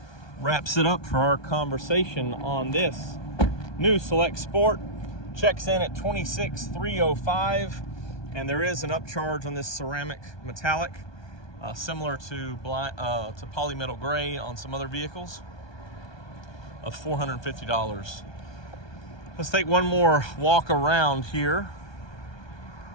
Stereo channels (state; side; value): late; right; 1.2 ms